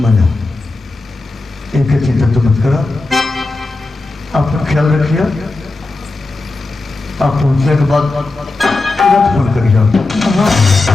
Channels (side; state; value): right; quieter; 3.3 dB